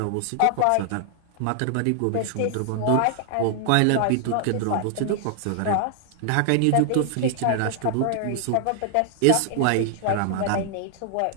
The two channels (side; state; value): both; different; correlation 0.00